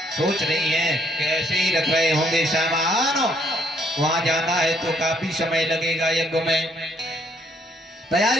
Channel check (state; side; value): normal; both; correlation 0.68